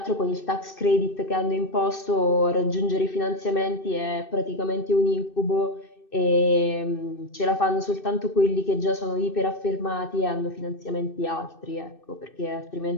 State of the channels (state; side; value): late; right; 2.6 ms